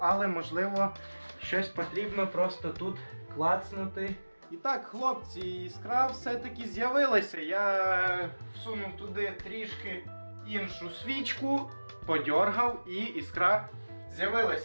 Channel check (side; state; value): both; inverted; correlation -1.00